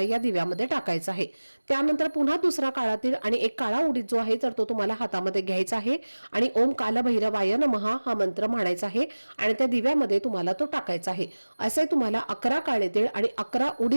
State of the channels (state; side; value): inverted; both; correlation -1.00